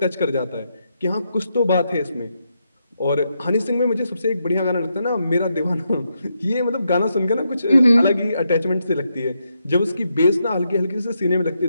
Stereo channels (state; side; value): inverted; both; correlation -0.82